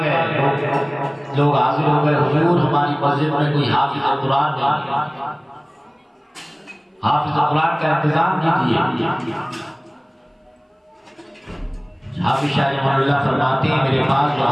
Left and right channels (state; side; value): identical; both; correlation 1.00